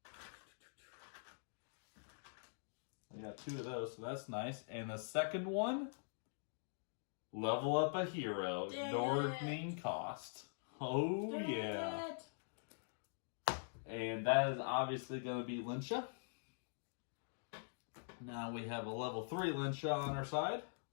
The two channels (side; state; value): right; silent; digital silence